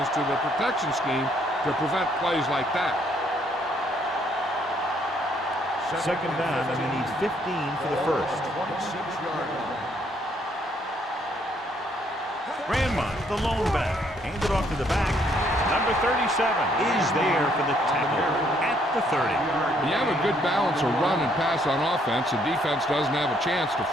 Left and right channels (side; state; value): both; normal; correlation 0.68